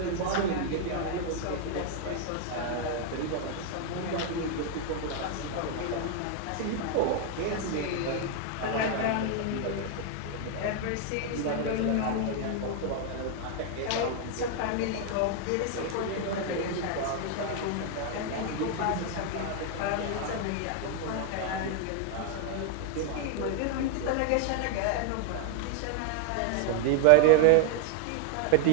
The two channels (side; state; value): both; different; correlation 0.00